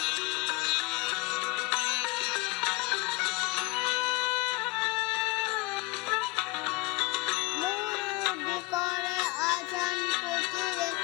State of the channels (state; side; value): quieter; right; 24.0 dB